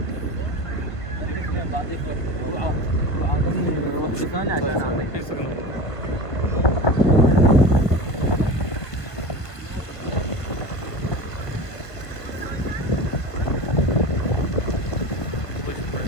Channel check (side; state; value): right; late; 1.5 ms